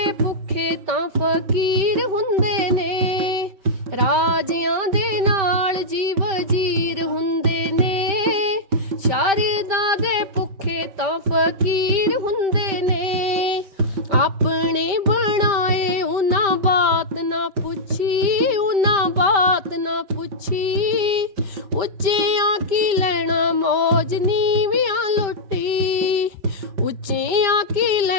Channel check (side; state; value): left; late; 5.1 ms